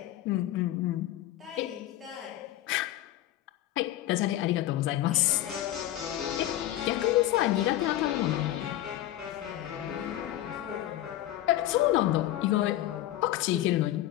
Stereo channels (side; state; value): right; quieter; 14.0 dB